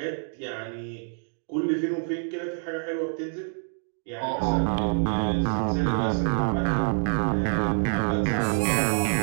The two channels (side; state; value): left; silent; digital silence